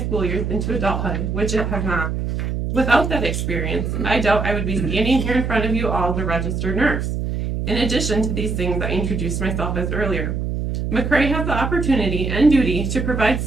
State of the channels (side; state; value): right; noise; hum, 2 dB below the sound